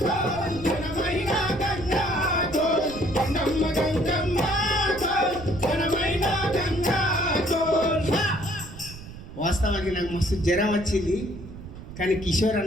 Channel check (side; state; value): right; noise; rumble, 14 dB below the sound